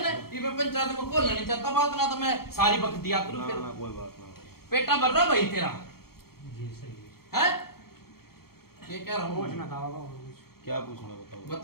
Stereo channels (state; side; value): late; right; 0.94 ms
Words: ना ये मैं पंचायत में खोलना नहीं चाहता बात ना तो मैं सारी वक्त दिया करूं ना फिर ना कोई बात ना। पेटा भर रहा भाई तेरा जी सही है। है ये कह रहा हूँ पूछना था बाबा और कुछ। क्या पूछना बताओ।